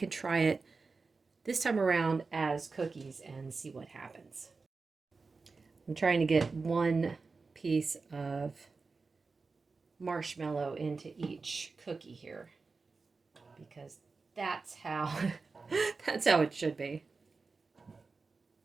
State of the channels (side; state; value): left; quieter; 4.2 dB